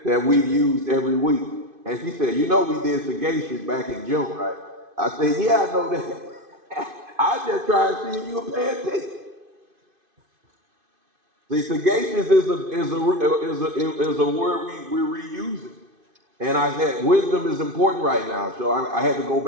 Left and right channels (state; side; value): late; left; 2.5 ms